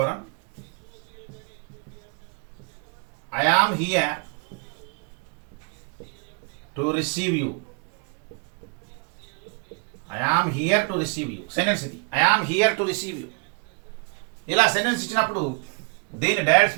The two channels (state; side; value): quieter; left; 35.3 dB